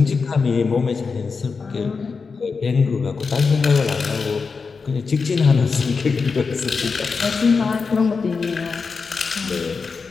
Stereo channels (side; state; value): right; quieter; 4.9 dB